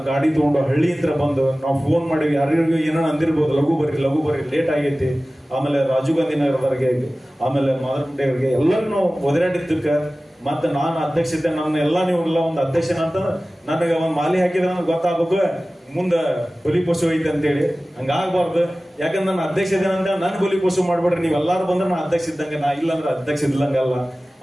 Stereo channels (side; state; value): both; normal; correlation 0.97